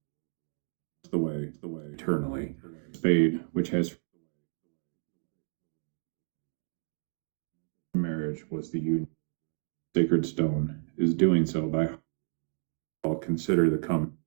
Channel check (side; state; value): left; silent; 57 dB below the other